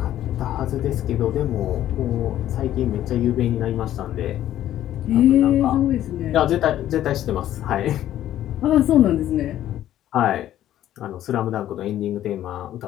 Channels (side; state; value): right; quieter; 12.4 dB